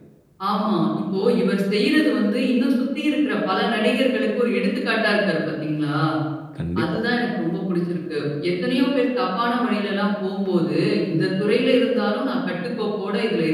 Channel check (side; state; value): both; identical; correlation 1.00